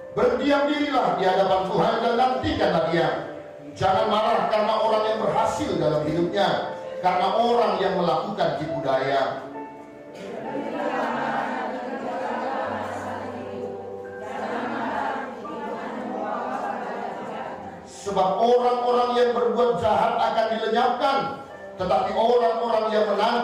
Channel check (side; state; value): both; identical; correlation 1.00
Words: Berdiam dirilah di hadapan Tuhan dan nantikanlah Dia. Jangan marah karena orang yang berhasil dalam hidupnya, karena orang yang melakukan tipu daya. Sebab orang-orang yang berbuat jahat akan dilenyapkan, tetapi orang-orang yang